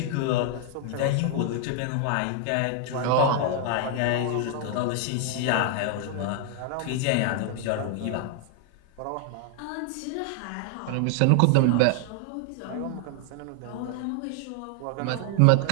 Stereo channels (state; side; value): different; both; correlation 0.00